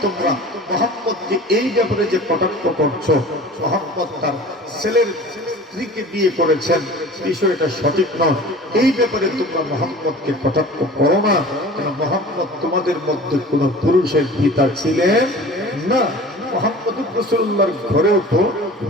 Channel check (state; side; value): normal; both; correlation 0.41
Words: তোমরা মুহাম্মদকে এই ব্যাপারে যে কটাক্ষ করছো, মুহাম্মদ তার ছেলের স্ত্রীকে বিয়ে করেছেন, বিষয়টা সঠিক নয়। এই ব্যাপারে তোমরা মুহাম্মদকে কটাক্ষ করো না, কেন মুহাম্মদ তোমাদের মধ্যে কোন পুরুষের পিতা ছিলেন না। মুহাম্মদুর রাসূলুল্লাহর ঘরেও তো